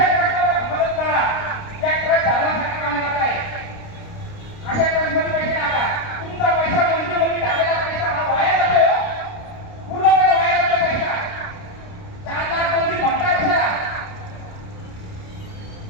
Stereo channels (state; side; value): late; right; 29 ms